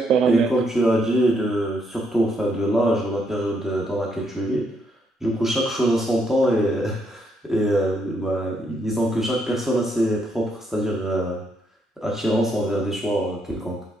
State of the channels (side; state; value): both; normal; correlation 0.75